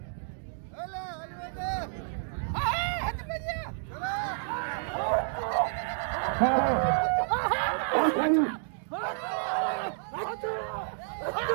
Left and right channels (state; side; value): silent; left; digital silence